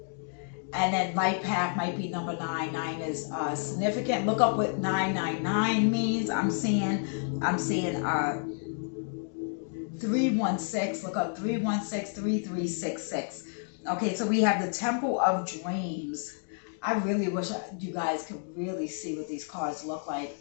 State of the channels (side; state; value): right; silent; 58 dB below the other